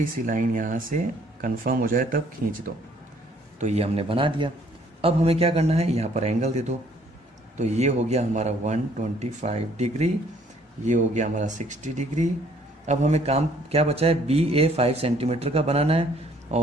सी लाइन यहाँ से कंफर्म हो जाए तब खींच दो। तो ये हमने बना दिया। अब हमें क्या करना है, यहाँ पर एंगल दे दो। तो ये हो गया हमारा 125 डिग्री, ये हो गया हमारा 60 डिग्री। अब हमें काम क्या बचा है, बी ए 5 सेंटीमीटर का बनाना है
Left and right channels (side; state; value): both; normal; correlation 0.62